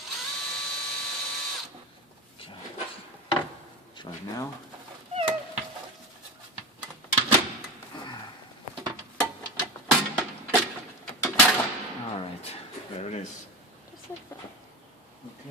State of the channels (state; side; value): normal; both; correlation 0.24